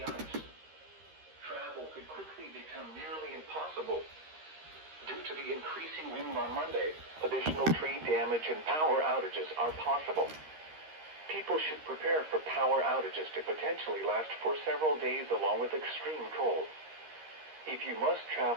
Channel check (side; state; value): left; late; 13 ms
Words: ice. Travel could quickly become nearly impossible. Due to the increasing wind on Monday, additional tree damage and power outages are possible. People should prepare for power outages to potentially last for several days along with extreme cold. If you must